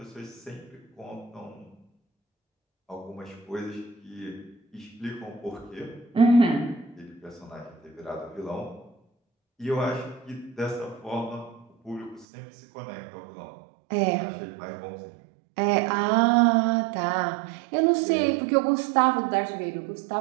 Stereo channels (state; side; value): drops out; left; at 12.2 s